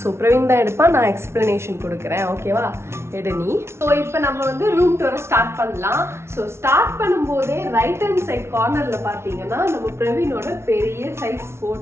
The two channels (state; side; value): late; left; 0.13 ms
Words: ஸோ பிரவீன் தான் எடுப்பான், நான் எக்ஸ்பிளனேஷன் கொடுக்குறேன். ஓகேவா, எடு நீ. ஸோ இப்போ நம்ம வந்து ரூம் டூரை ஸ்டார்ட் பண்ணலாம். ஸோ ஸ்டார்ட் பண்ணும்போதே ரைட் ஹேண்ட் சைட் கார்னரில் பார்த்தீங்கன்னா நம்ம பிரவீனோட பெரிய சைஸ்